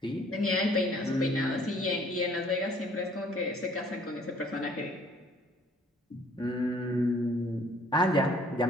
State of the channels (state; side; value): normal; both; correlation 0.58